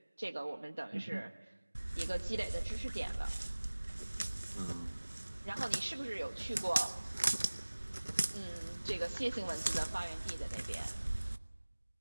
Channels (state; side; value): inverted; both; correlation -1.00